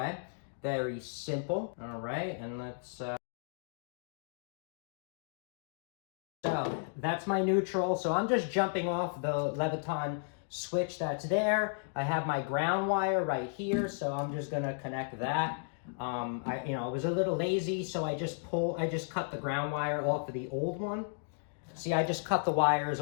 Very simple, all right? And let's, so that's my neutral. So I'm just jumping off the Leviton switch that's there. I have my ground wire right here, so I'm just gonna connect that. I was a little lazy, so I just cut the ground wire off of the old one. See, I just cut the wires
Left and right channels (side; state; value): right; silent; digital silence